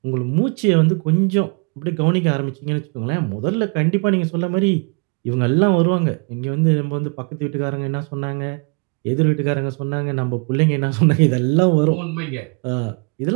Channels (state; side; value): quieter; left; 35.5 dB